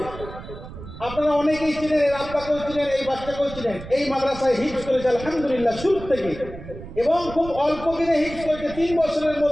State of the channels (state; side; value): noise; right; rumble, 13 dB below the sound